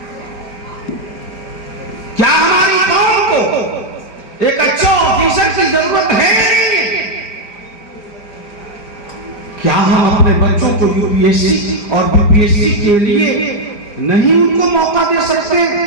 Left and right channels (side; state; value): right; late; 4.8 ms